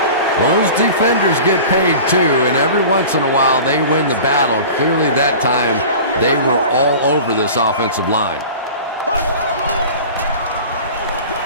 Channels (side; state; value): both; inverted; correlation -0.38